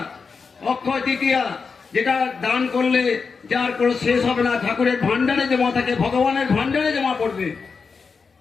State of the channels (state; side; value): quieter; right; 5.1 dB